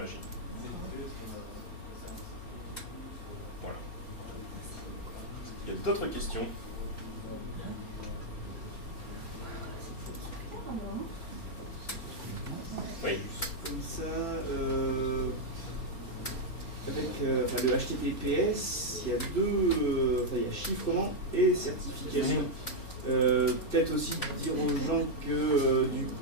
Voilà. Il y a d'autres questions? Oui. Comme ça, avec le HTTPS, il y a il y a chiffrement et certification. Peut-être aussi dire aux gens que du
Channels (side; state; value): right; late; 4.4 ms